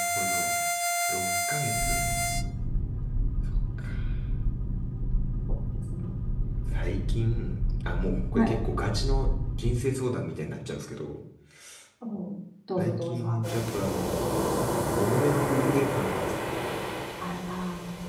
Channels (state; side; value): identical; both; correlation 1.00